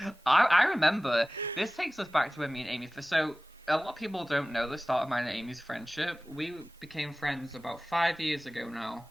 I remember, this takes us back to when me and Amy, so a lot of people don't know the start of mine and Amy's friendship. We became friends about 5 years ago now,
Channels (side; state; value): both; normal; correlation 0.97